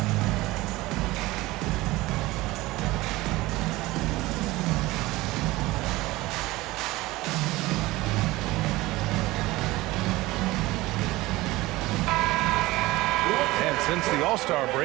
Since the All-Star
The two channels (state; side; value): quieter; left; 19.4 dB